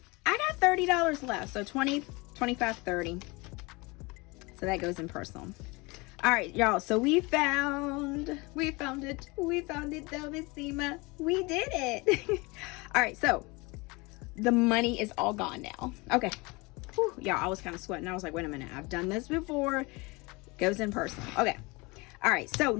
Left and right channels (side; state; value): right; quieter; 25.6 dB